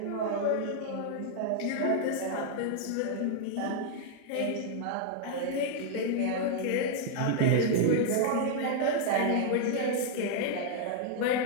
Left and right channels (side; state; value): both; different; correlation 0.00